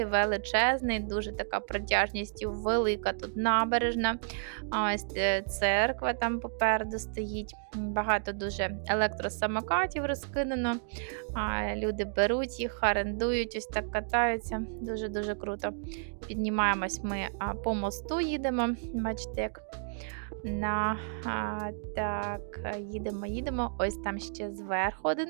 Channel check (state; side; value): silent; left; digital silence